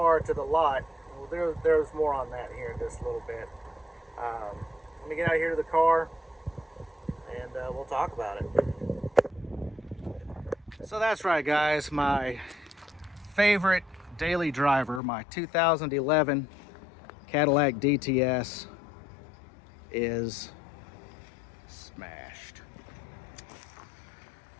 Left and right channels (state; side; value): drops out; right; at 15.0 s